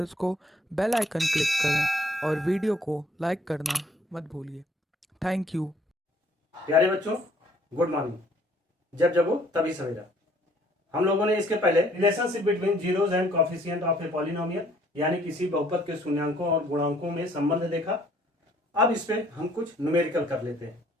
को। बेल आइकन क्लिक करें और वीडियो को लाइक करना मत भूलिए। Thank you. प्यारे बच्चों, गुड मॉर्निंग। जब जगो तभी सवेरा। हम लोगों ने इसके पहले relationship between zeros and coefficient of a polynomial यानी किसी बहुपद के शून्यांकों और गुणांकों में संबंध देखा। अब इस पे हम कुछ न्यूमेरिकल कर लेते हैं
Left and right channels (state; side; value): normal; both; correlation 0.61